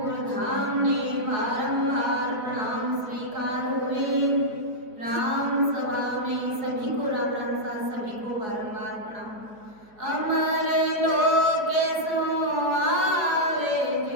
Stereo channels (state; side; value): late; left; 4.6 ms